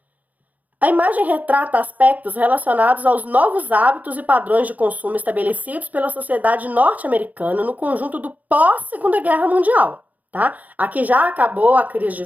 A imagem retrata aspectos relacionados aos novos hábitos e padrões de consumo estabelecidos pela sociedade norte-americana no conjunto do pós-Segunda Guerra Mundial, tá? Aqui já acabou a crise de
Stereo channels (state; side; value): late; left; 0.078 ms